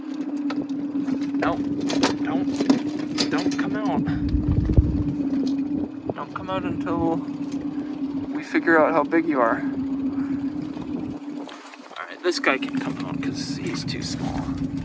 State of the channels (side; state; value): both; identical; correlation 1.00